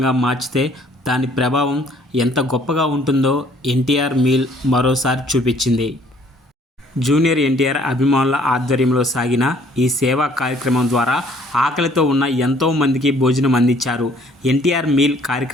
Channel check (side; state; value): both; normal; correlation 0.60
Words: మార్చితే దాని ప్రభావం ఎంత గొప్పగా ఉంటుందో ఎన్టీఆర్ మీల్ మరోసారి చూపించింది. జూనియర్ ఎన్టీఆర్ అభిమానుల ఆధ్వర్యంలో సాగిన ఈ సేవా కార్యక్రమం ద్వారా ఆకలితో ఉన్న ఎంతో మందికి భోజనం అందించారు. ఎన్టీఆర్ మీల్